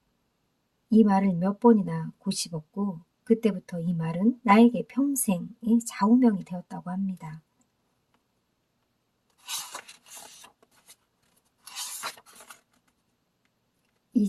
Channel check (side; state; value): both; identical; correlation 1.00